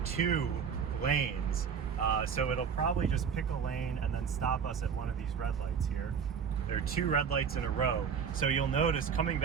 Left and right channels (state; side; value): quieter; left; 6.9 dB